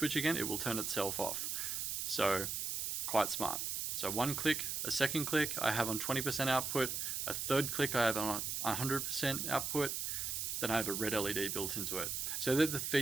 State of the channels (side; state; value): right; noise; hiss, 2 dB below the sound